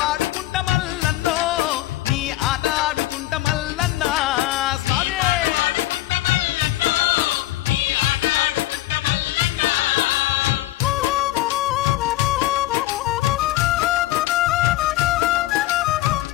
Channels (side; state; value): right; quieter; 15.9 dB